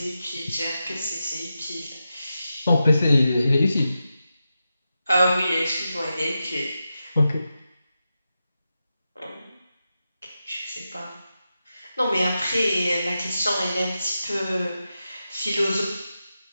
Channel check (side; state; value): both; inverted; correlation -0.90